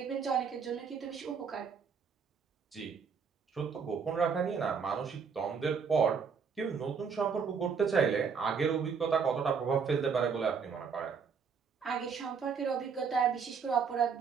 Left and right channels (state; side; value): quieter; left; 6.0 dB